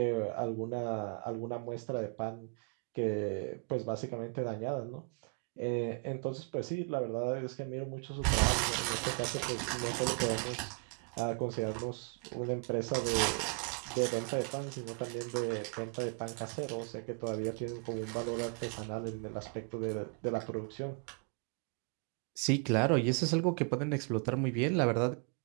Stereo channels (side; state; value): left; quieter; 38.1 dB